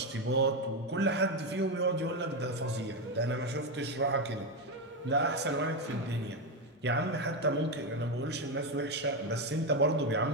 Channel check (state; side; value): normal; both; correlation 0.09